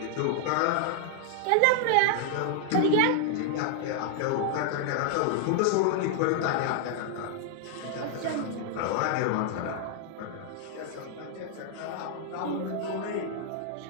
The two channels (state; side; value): different; both; correlation 0.00